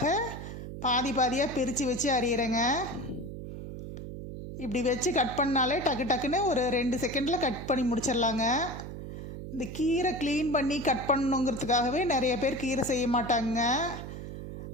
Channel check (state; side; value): noise; right; hum, 9 dB below the sound